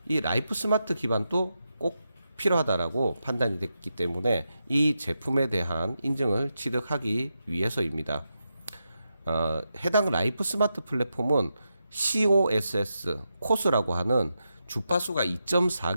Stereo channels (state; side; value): inverted; both; correlation -0.87